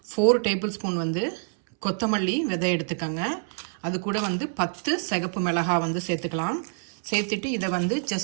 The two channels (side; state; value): left; silent; 61 dB below the other